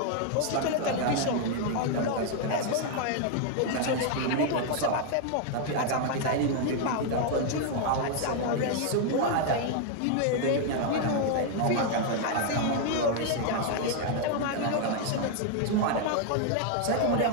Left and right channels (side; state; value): both; different; correlation 0.00